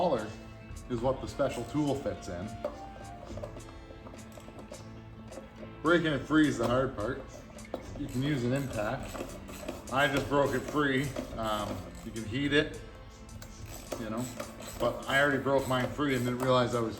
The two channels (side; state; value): both; identical; correlation 1.00